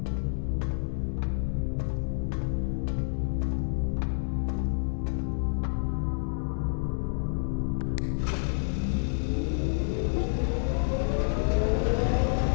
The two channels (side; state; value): right; silent; digital silence